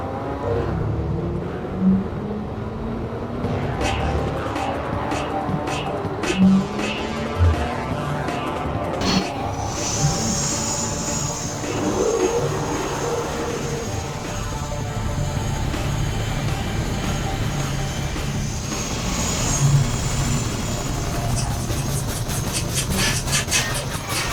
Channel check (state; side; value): identical; both; correlation 1.00